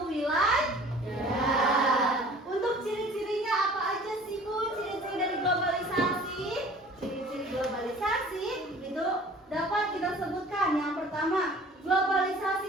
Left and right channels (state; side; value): normal; both; correlation 0.48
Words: wilayah. Untuk ciri-cirinya apa aja sih Bu? Ciri-ciri dari globalisasi? Ciri-ciri globalisasi itu dapat kita sebutkan. Yang pertama, globalisasi